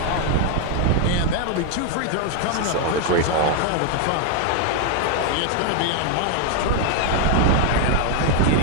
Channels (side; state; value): both; different; correlation 0.00